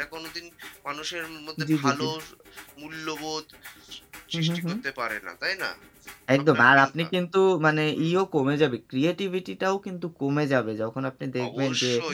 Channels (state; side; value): identical; both; correlation 1.00